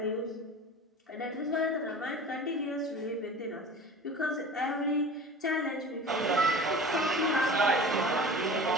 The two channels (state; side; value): normal; both; correlation 0.37